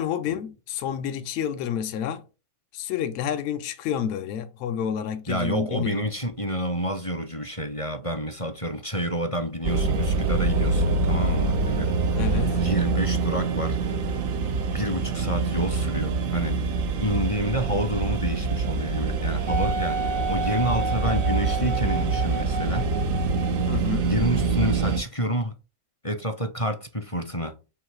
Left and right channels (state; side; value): late; right; 1.5 ms